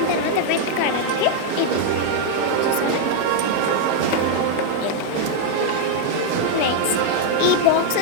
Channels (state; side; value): different; both; correlation 0.00